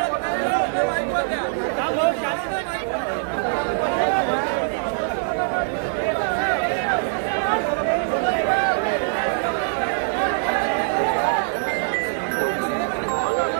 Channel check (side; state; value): left; silent; digital silence